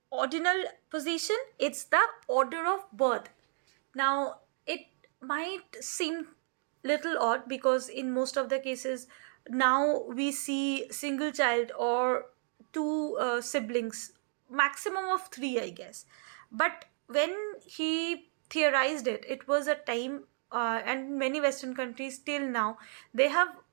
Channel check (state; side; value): silent; left; 56 dB below the other